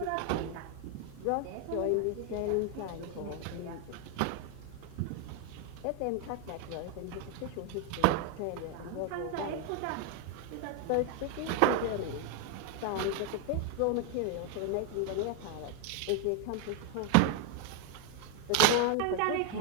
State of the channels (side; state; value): both; different; correlation 0.01